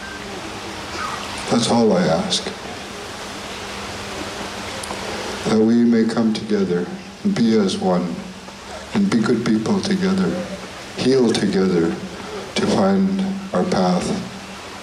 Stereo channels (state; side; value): identical; both; correlation 1.00